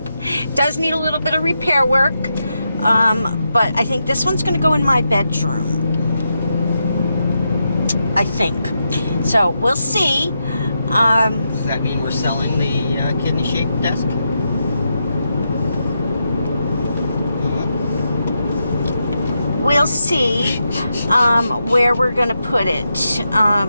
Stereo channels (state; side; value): inverted; both; correlation -0.85